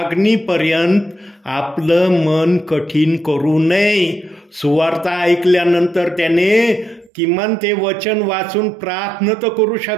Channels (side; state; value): left; drops out; at 7.1 s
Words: आपलं मन कठीण करू नये. सुवार्ता ऐकल्यानंतर त्याने किमान ते वचन वाचून प्रार्थना तर करू